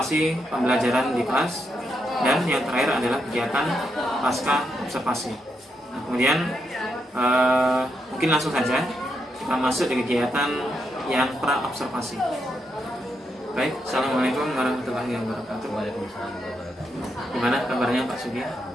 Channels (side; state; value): both; normal; correlation 0.81